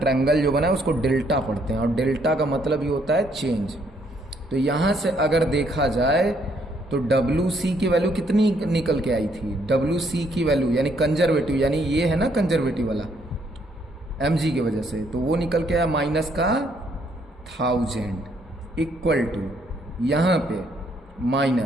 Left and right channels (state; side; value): normal; both; correlation 0.70